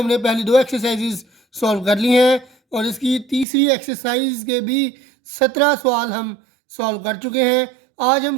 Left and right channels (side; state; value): left; drops out; at 3.5 s